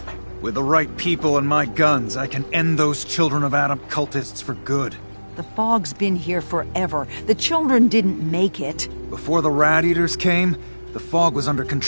With the right people and my guns, I can end those Children of Adam cultists for good. The fog's been here forever. The children didn't make it. Before the Rat Eaters came, the fog was under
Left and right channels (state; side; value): inverted; both; correlation -1.00